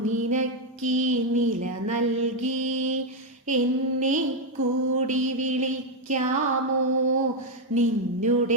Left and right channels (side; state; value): both; normal; correlation 0.02